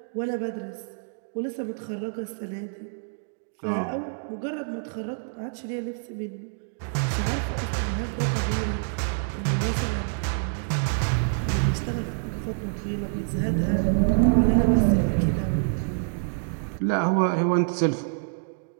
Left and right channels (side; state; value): left; silent; digital silence